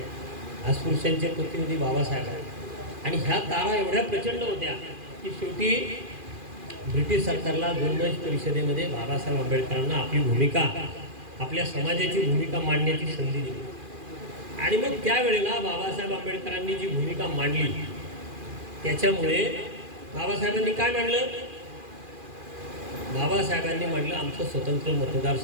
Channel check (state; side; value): late; left; 2.4 ms